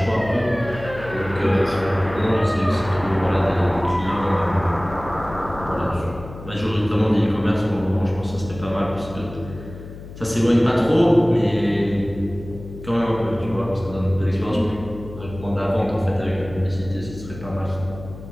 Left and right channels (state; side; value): noise; left; hum, 14 dB below the sound